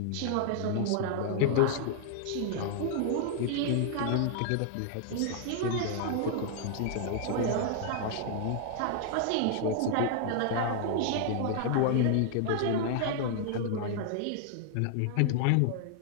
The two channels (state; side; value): different; both; correlation -0.01